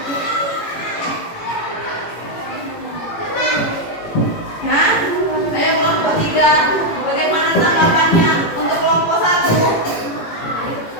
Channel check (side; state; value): right; late; 18 ms